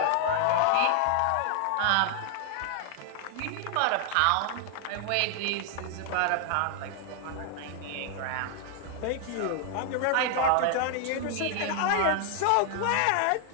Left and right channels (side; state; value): both; different; correlation 0.00